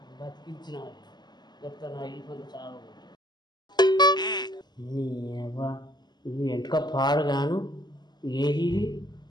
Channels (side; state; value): right; late; 0.21 ms